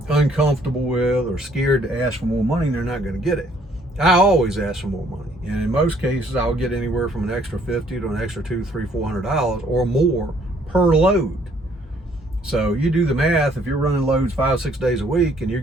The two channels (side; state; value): both; normal; correlation 0.63